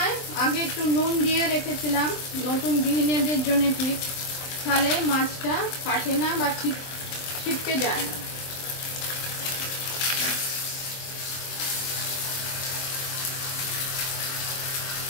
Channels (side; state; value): right; late; 23 ms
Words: আগে একটু নুন দিয়ে রেখেছিলাম, নতুন গৃহিণীদের জন্য টিপস, তাহলে মাছটা ফাটে না বা ছিটকে যায় না।